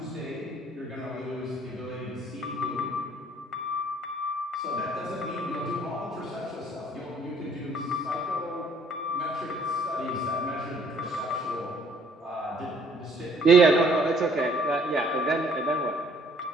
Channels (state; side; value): normal; both; correlation 0.60